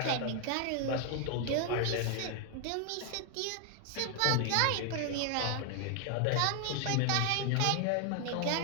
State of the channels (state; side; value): different; both; correlation 0.00